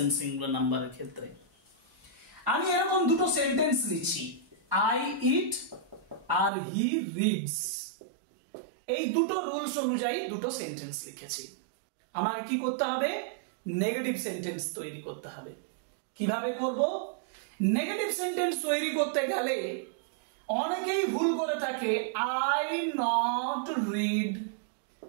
singular নাম্বারের ক্ষেত্রে। আমি এরকম দুটো সেন্টেন্স লিখছি, আই ইট আর হি রিডস। এই দুটো রুলস অনুযায়ী দুটো সেন্টেন্স লিখেছি। আমাকে কি করতে হবে? নেগেটিভ সেন্টেন্স তৈরি করতে হবে। কিভাবে করব? নেগেটিভ সেন্টেন্স তৈরি করতে গেলে অনেকেই ভুল করে থাকে। I not read,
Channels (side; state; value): left; drops out; at 6.5 s